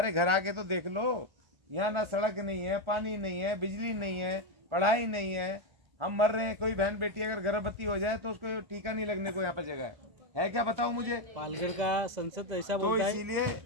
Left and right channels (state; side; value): late; left; 1.4 ms